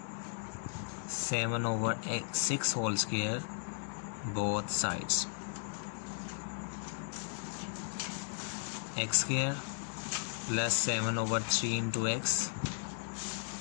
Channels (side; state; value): right; silent; digital silence